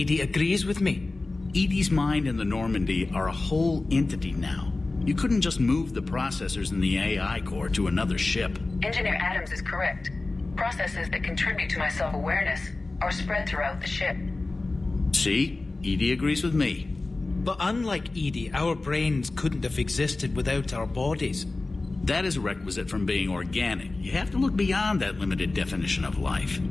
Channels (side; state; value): right; quieter; 3.3 dB